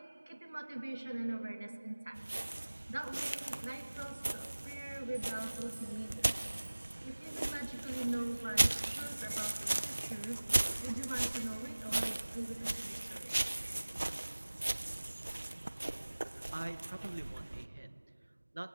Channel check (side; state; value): both; inverted; correlation -1.00